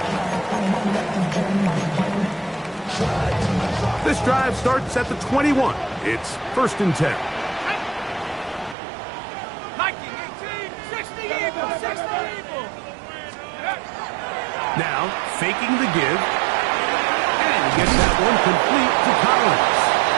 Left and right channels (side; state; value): left; drops out; at 8.8 s